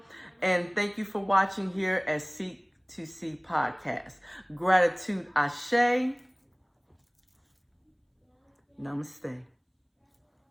And thank you for watching here at Seek to See Podcast. Gratitude, Ashe. Namaste.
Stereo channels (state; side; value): identical; both; correlation 1.00